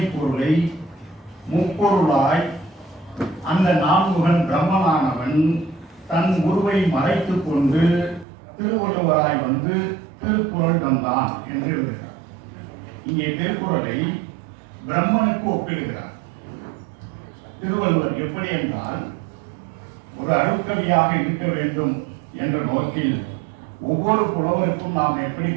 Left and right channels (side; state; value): left; drops out; at 8.2 s